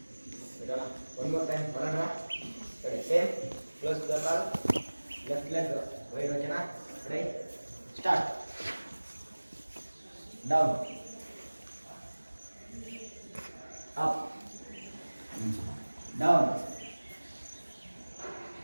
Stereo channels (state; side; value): inverted; both; correlation -1.00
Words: ಒನ್ ಮೋರ್ ಟೈಮ್ ಬರೋಣ. ರೆಡಿ? ಸೇಮ್. ಕ್ಲೋಸ್ ದ ಕಾಲ್. Left leg right. ಓಕೆನಾ? Ready? Start. Down, up, down,